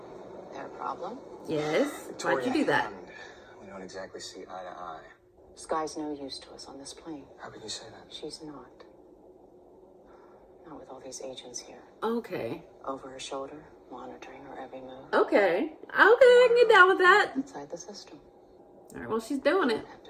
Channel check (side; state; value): both; identical; correlation 1.00